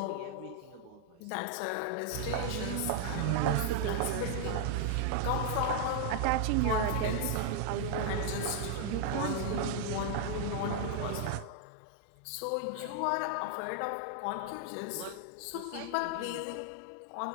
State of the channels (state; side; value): different; both; correlation -0.01